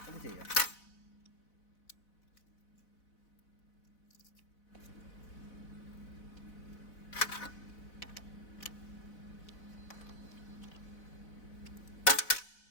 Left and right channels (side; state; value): right; late; 4.0 ms